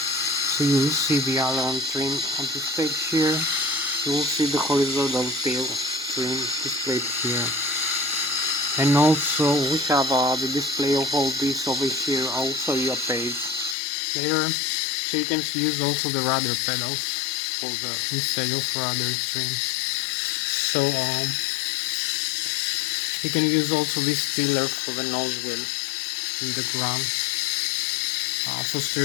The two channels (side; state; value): right; drops out; at 13.8 s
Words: So you will see the aileron trim on this page here. You will see the horizontal tail trim displayed here. And also we have the display of all this over here. I'll show you a page later. So you can use also the rudder pedals for the instead of rudder trim. So you can use also this tiller for the nose wheel in the ground. For